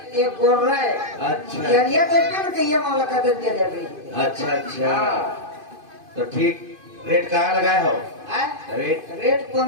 ये बोल रहा है। अच्छा। ये देखते ना कहिए माला का दे दे रही। अच्छा अच्छा। तो ठीक, रेट कहाँ लगाए हो? रेट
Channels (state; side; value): late; left; 2.5 ms